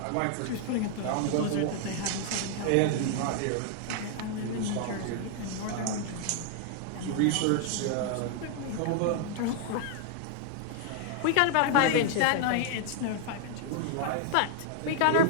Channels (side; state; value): both; different; correlation 0.00